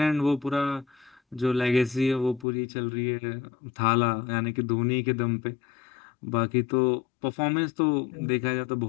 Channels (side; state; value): right; drops out; at 2.5 s